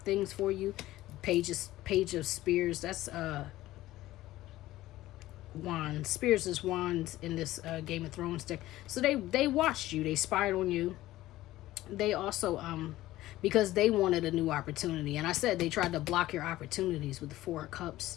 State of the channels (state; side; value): quieter; right; 16.0 dB